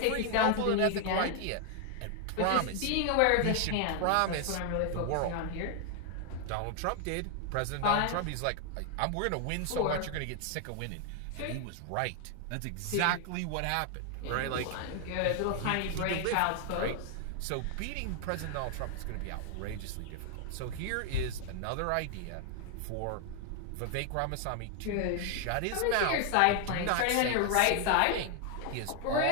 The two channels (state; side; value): different; both; correlation 0.00